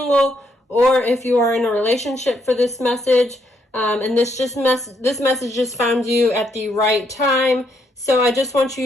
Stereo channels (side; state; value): both; normal; correlation 0.75